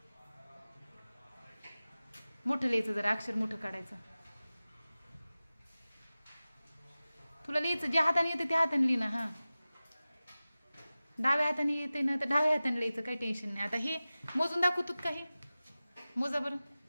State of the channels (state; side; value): inverted; both; correlation -0.97